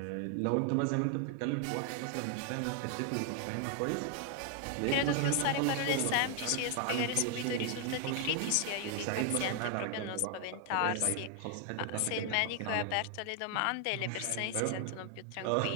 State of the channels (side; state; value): both; different; correlation 0.00